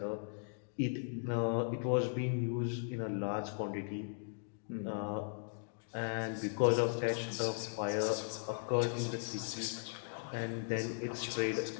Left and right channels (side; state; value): right; silent; digital silence